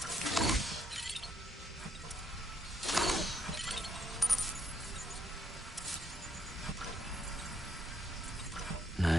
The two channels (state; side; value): normal; both; correlation 0.74